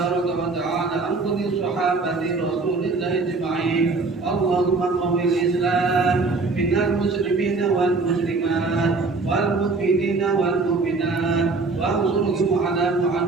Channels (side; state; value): left; quieter; 3.9 dB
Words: وتعالى عن كل صحابة رسول الله أجمعين. اللهم قوي الإسلام من المسلمين والمسلمات والمؤمنين والمؤمنات وانصرهم على